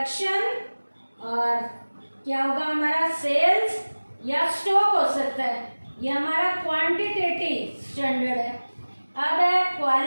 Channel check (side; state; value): both; inverted; correlation -1.00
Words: और क्या होगा हमारा सेल्स या स्टॉक हो सकता है, ये हमारा क्वांटिटेटिव स्टैंडर्ड है। अब है